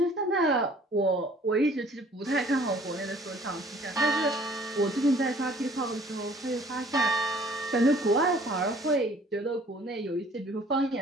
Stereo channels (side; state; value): both; normal; correlation 0.55